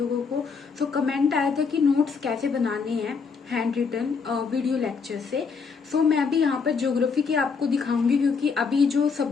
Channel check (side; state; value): right; quieter; 5.4 dB